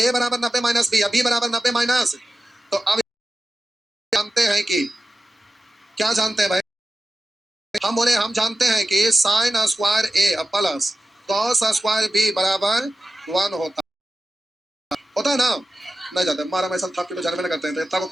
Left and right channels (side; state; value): both; normal; correlation 0.93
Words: बराबर 90 माइनस बी, या बी बराबर 90 माइनस, तो अब जानते हैं कि, क्या जानते हैं भाई, हम बोले हम जानते हैं कि साइन स्क्वायर ए प्लस कॉस स्क्वायर बी बराबर 1 होता है ना, नहीं जाते, मारा मैं सब के तो जन्म में करते हैं, तो इतना को